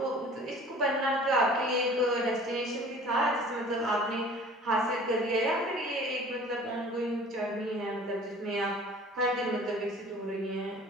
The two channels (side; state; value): both; normal; correlation 0.47